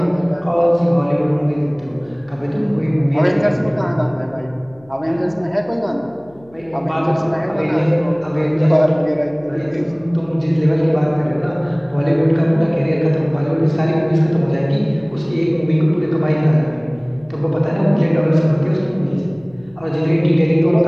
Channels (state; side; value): noise; left; hum, 27 dB below the sound